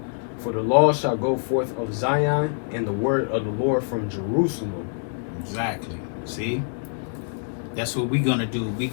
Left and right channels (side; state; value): right; silent; 62 dB below the other